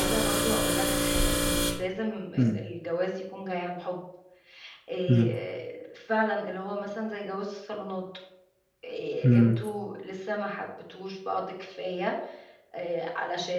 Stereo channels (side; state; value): both; identical; correlation 1.00